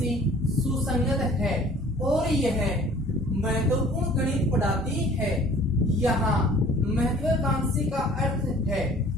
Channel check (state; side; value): normal; both; correlation 0.50